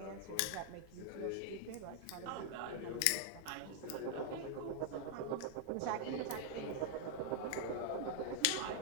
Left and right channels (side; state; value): both; different; correlation 0.00